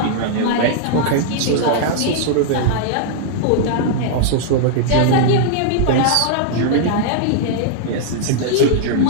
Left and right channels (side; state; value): both; different; correlation -0.01